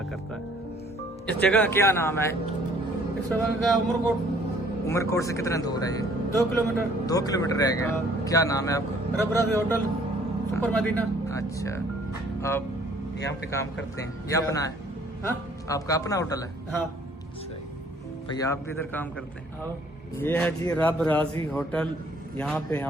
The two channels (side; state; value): both; normal; correlation 0.59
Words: करता है। इस जगह का क्या नाम है? इस जगह का उमरकोट। उमरकोट से कितना दूर है ये? 2 किलोमीटर। 2 किलोमीटर रह गया। क्या नाम है आपका? रब राजी होटल, सुपर मदीना। अच्छा, आप यहाँ पे काम करते हैं? ये अपना है? हाँ, आपका अपना होटल है? हाँ। भैया आप भी इधर काम करते हैं? हाँ। ये है जी रब राजी होटल। यहाँ पे